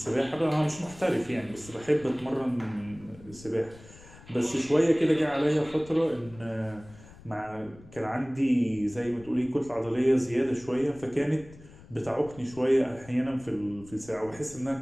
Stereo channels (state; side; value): noise; left; rumble, 21 dB below the sound